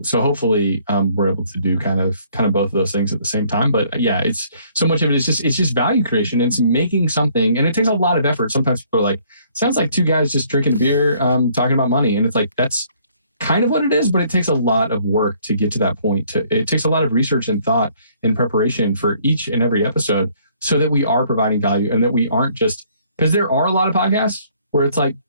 hopefully we're able to do kind of both of those things at the same time. But yeah, it's so much of it. It's just value creation. It's making something, and it takes a lot of effort. Sometimes people are like, sounds like two guys just drinking a beer, talking about money. And it's like, that's kind of what it is, but it takes a lot of work to get to that point. It takes a lot of research and thought and preparation for each and every episode, so that we are providing value, and that we aren't just, because there are a lot of podcasts where it's like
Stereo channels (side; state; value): both; inverted; correlation -0.62